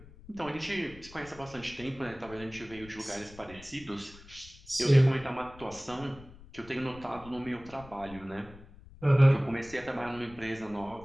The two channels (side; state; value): left; noise; rumble, 20 dB below the sound